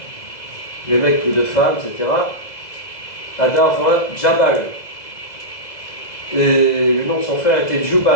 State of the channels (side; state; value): right; late; 2.0 ms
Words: Lémec plus de femmes, etc. Ada enfanta Jabal. Et le nom de son frère était